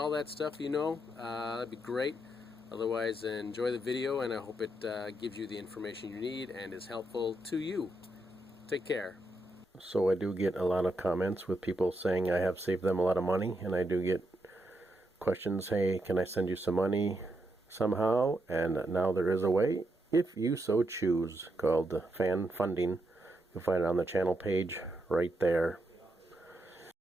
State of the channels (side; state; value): both; normal; correlation 0.81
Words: that stuff, that'd be great. Otherwise, enjoy the video, and I hope it gives you the information you need and is helpful to you. Take care. So I do get a lot of comments with people saying I have saved them a lot of money, and I do get questions, hey, can I send you some money somehow? And now there is a way, if you so choose, called fan funding. You'll find it on the channel page right there.